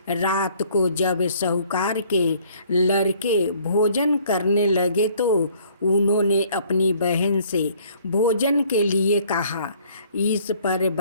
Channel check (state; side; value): inverted; both; correlation -0.59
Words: रात को जब साहूकार के लड़के भोजन करने लगे तो उन्होंने अपनी बहन से भोजन के लिए कहा। इस पर